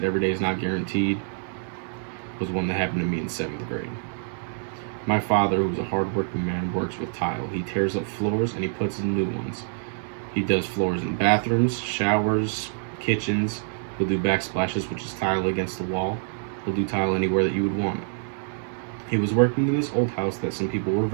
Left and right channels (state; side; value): silent; left; 61 dB below the other